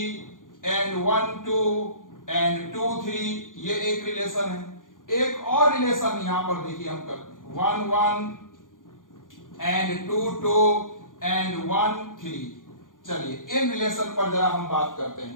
एंड 1, 2 एंड 2, 3, ये एक रिलेशन है। एक और रिलेशन यहां पर देखिए हम करते हैं 1, 1 एंड 2, 2 एंड 1, 3। चलिए, इन रिलेशन पर जरा हम बात करते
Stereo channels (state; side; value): late; right; 0.89 ms